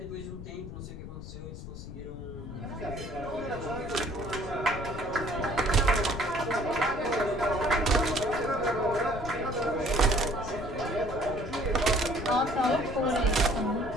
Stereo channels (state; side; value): noise; left; rumble, 10 dB below the sound